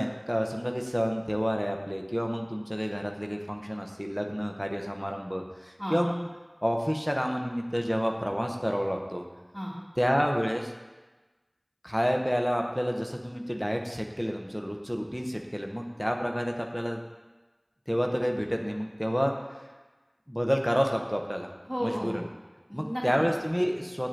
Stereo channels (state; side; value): identical; both; correlation 1.00